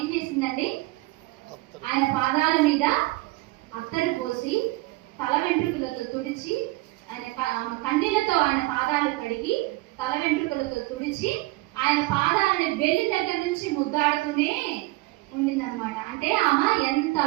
ఏం చేసిందండి? ఆయన పాదాల మీద అత్తరు పోసి తల వెంట్రుకలతో తుడిచి ఆయన కన్నీళ్లతో ఆయన పాదాలు కడిగి తల వెంట్రుకలతో తుడిచి ఆయన పాదాలని బెల్లి దగ్గర నుంచి ముద్దాడుతూనే ఉండిందనమాట. అంటే ఆమె ఎంత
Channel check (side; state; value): left; quieter; 20.9 dB